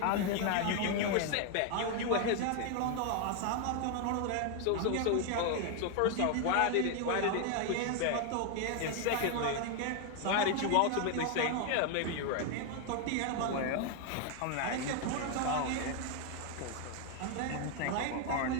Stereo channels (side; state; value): both; different; correlation 0.01